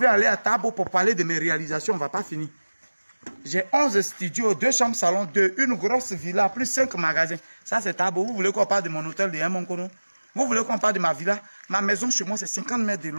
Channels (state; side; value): inverted; both; correlation -1.00